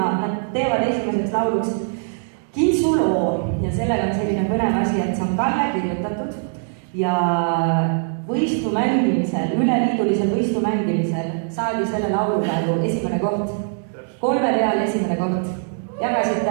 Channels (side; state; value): left; silent; digital silence